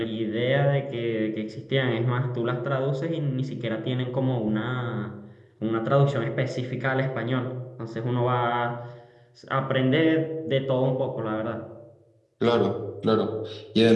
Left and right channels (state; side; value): identical; both; correlation 1.00